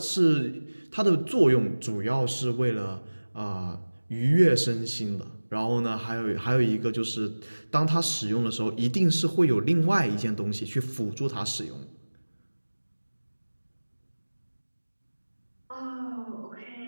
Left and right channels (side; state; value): both; inverted; correlation -1.00